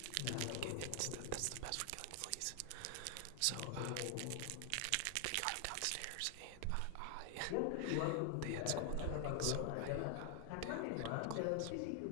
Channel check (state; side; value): different; both; correlation 0.00